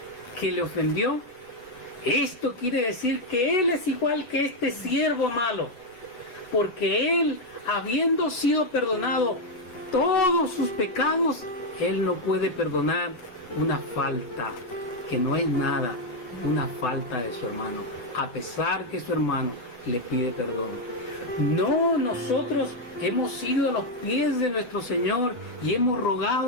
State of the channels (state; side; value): late; right; 8.0 ms